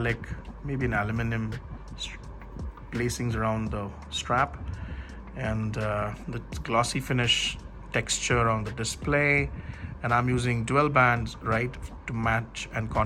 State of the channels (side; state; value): both; identical; correlation 1.00